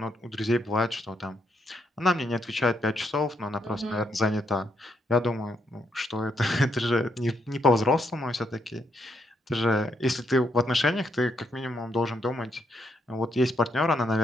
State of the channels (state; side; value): normal; both; correlation 0.77